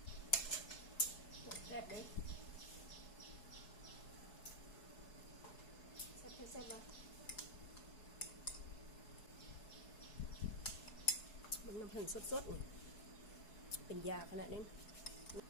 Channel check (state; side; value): late; right; 4.7 ms